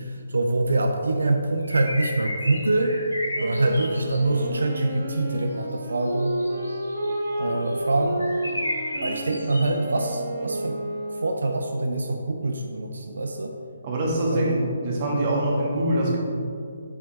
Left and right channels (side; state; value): both; inverted; correlation -0.84